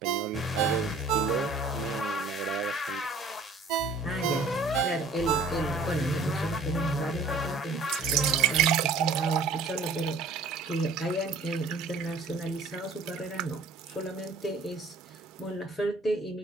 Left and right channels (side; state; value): left; quieter; 3.6 dB